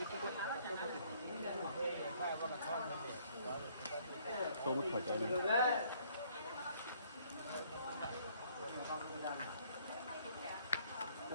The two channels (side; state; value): both; inverted; correlation -0.63